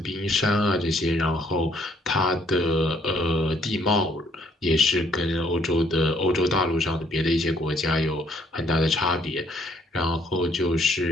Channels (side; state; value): both; normal; correlation 0.65